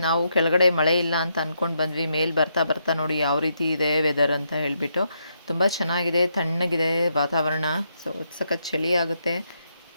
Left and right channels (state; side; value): inverted; both; correlation -0.79